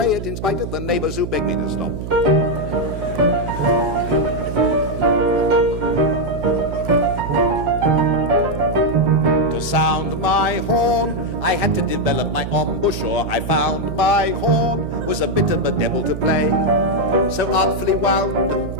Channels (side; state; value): right; noise; hum, 7 dB below the sound